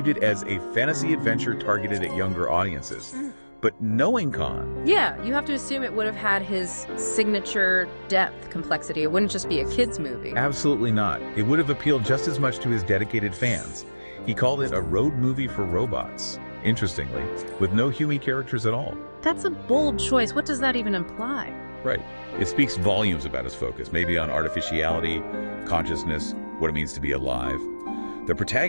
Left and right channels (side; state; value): both; inverted; correlation -1.00